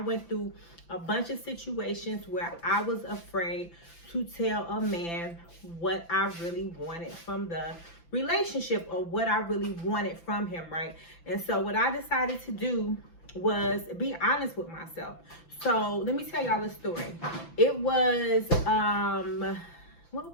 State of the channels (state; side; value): late; right; 5.9 ms